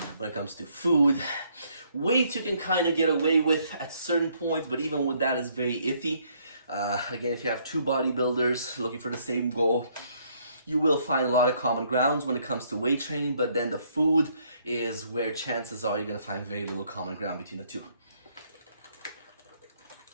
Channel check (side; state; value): both; inverted; correlation -0.68